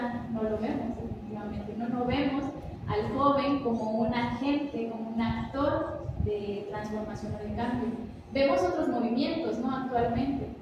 no lo vemos, efectivamente, no vemos al joven como un agente, como un actor de transformación o de cambio. Vemos otros movimientos, ¿no?, actualmente,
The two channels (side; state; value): both; identical; correlation 1.00